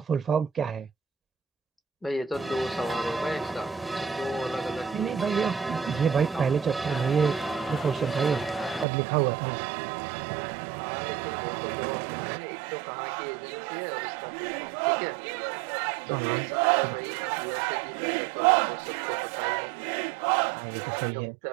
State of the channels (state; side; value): drops out; left; at 8.8 s